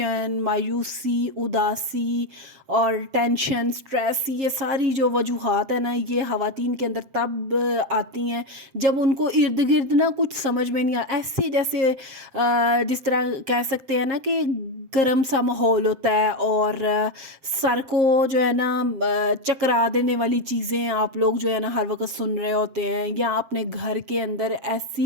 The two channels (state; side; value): late; left; 7.5 ms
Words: مایوسی، اداسی اور ٹینشن، سٹریس، یہ ساری جو وجوہات ہیں نا، یہ خواتین کے اندر تب آتی ہیں جب ان کو ارد گرد نا کچھ سمجھ میں نہیں ایسے جیسے جس طرح کہہ سکتے ہیں نا کہ گرم سا ماحول ہوتا ہے، اور سر کو جو ہے نا چکرا دینے والی چیزیں آپ لوگ جو ہے نا ہر وقت سن رہے ہوتے ہیں، یا اپنے گھر کے اندر ایسی